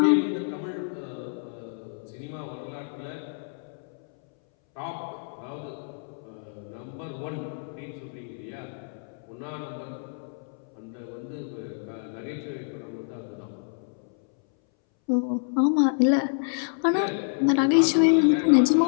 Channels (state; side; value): silent; right; 60 dB below the other